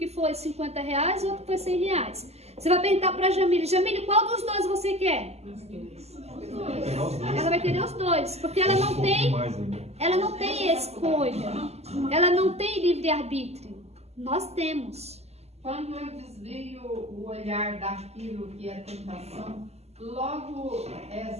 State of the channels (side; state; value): left; late; 0.30 ms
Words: foi R$50 e outro que foi R$100. Você vai perguntar para a Jamile, qual dos 2 você quer? Ela vai querer os 2, porque ela não tem escolha, ela não tem livre-arbítrio. Nós temos. Quando eu desvio o olhar daquilo que é tentação, logo